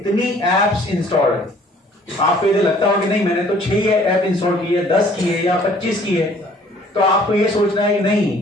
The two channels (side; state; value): both; normal; correlation 0.57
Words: एप्स इंस्टॉल्ड है। आपको यदि लगता हो कि नहीं मैंने तो 6 ऐप इंस्टॉल की है, 10 की है या 25 की है, तो आपको ये सोचना है कि